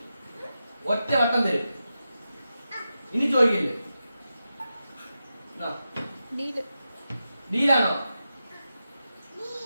ഒറ്റ വട്ടം തരും. ഇനി ചോദിക്കില്ലേ? ഡീലാണോ?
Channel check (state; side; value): inverted; both; correlation -0.90